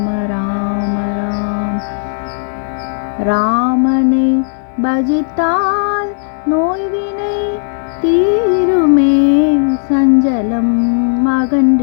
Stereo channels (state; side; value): silent; right; digital silence